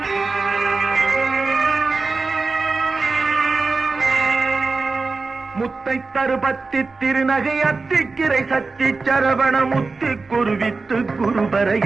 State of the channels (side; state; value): left; quieter; 4.0 dB